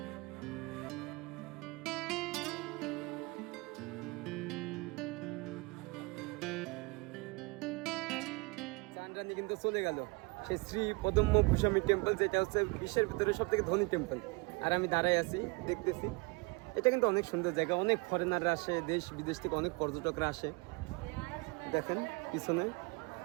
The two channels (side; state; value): left; quieter; 26.9 dB